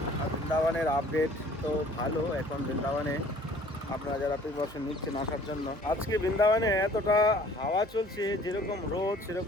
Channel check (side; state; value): both; normal; correlation 0.53